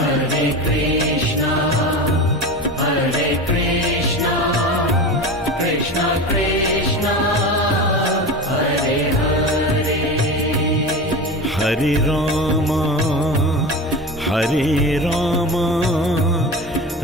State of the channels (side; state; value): both; normal; correlation 0.28